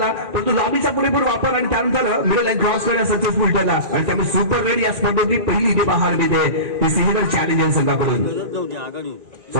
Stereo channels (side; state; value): left; late; 1.9 ms